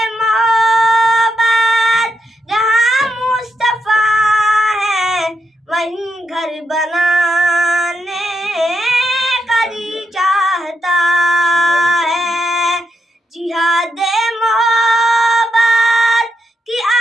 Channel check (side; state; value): both; normal; correlation 0.81